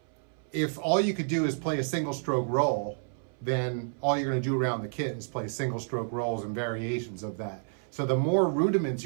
if all you could do is play a single stroke roll, then all you're going to do around the kit is play single stroke rolls and variations of that. So the more rudiments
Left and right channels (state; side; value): silent; left; 58 dB below the other